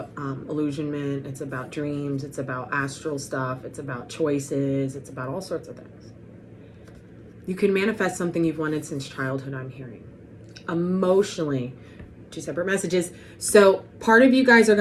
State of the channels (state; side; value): identical; both; correlation 1.00